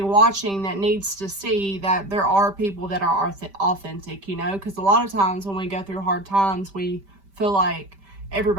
watching that needs to see that there are people that are authentic, you know, because a lot of times when we go through hard times, we feel like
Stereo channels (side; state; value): left; late; 5.1 ms